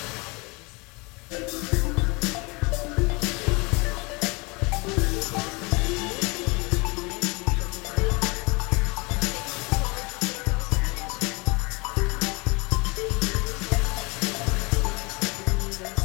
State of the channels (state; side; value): quieter; right; 27.9 dB